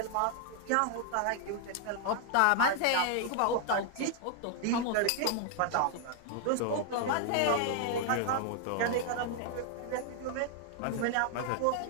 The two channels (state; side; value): different; both; correlation 0.00